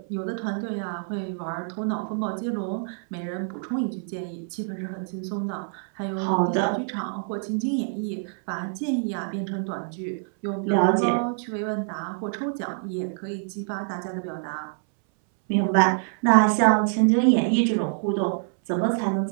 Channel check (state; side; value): silent; left; 61 dB below the other